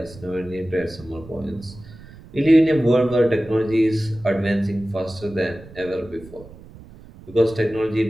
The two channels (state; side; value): noise; right; rumble, 19 dB below the sound